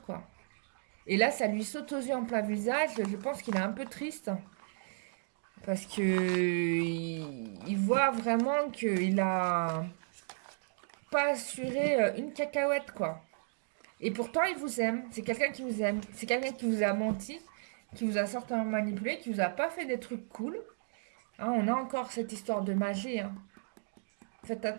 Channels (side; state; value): left; silent; digital silence